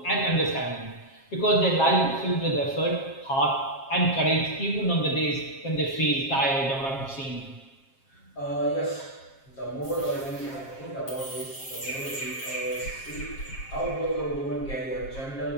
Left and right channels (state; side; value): late; right; 7.4 ms